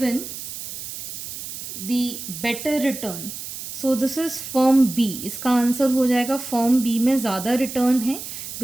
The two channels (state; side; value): noise; right; hiss, 9 dB below the sound